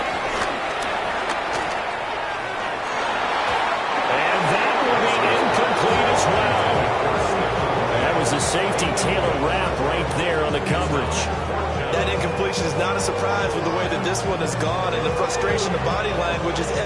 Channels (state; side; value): identical; both; correlation 1.00